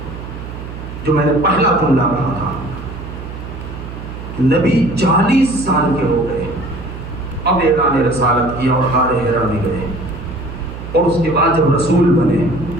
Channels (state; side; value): noise; right; hum, 10 dB below the sound